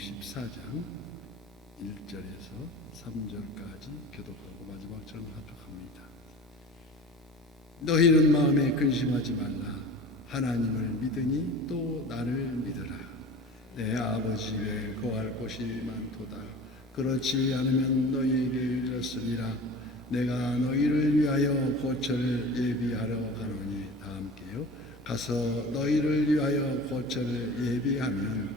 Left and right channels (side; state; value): both; normal; correlation 0.37